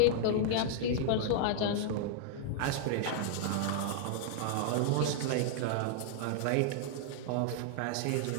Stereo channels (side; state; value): both; different; correlation -0.01